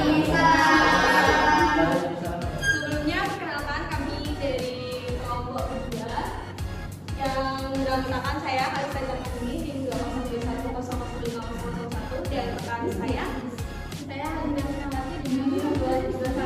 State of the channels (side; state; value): both; identical; correlation 1.00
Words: Sebelumnya perkenalkan kami dari kelompok kedua yang menggunakan saya Kalista Jamuni tim 201005001 dan rekan saya Hadina Sinamati di